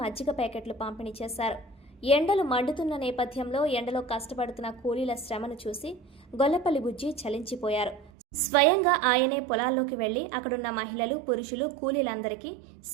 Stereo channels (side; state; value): left; drops out; at 8.1 s